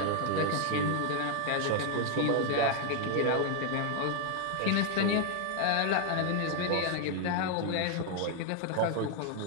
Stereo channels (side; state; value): both; different; correlation 0.00